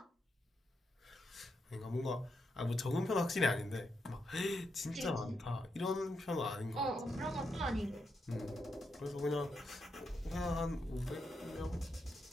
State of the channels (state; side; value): normal; both; correlation 0.83